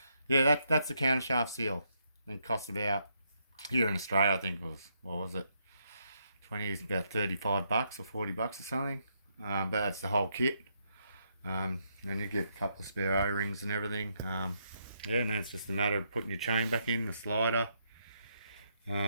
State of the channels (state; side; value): inverted; both; correlation -0.77